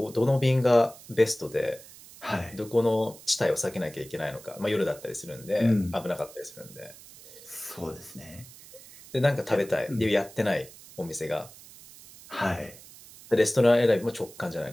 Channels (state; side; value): noise; right; hiss, 19 dB below the sound